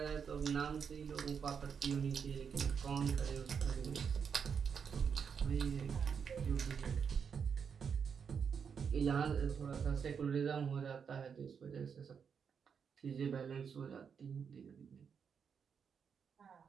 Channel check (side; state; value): left; quieter; 6.7 dB